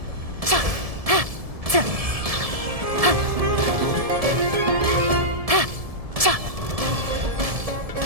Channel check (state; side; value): late; left; 1.7 ms